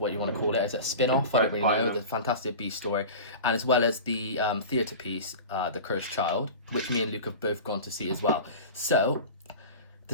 you want to call it. Is it a spin-off? I don't really know. The Fantastic Beast story, and as well as the theatre piece, The Cursed Child, which me and Luke have both gone to see as well. So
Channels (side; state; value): both; inverted; correlation -0.33